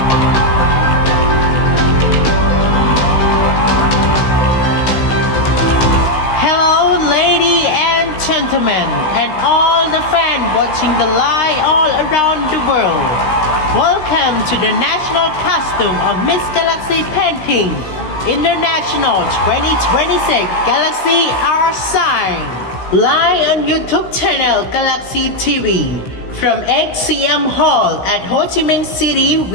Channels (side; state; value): right; late; 16 ms